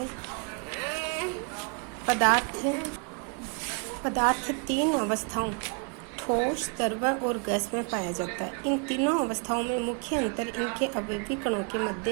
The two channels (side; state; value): left; quieter; 37.2 dB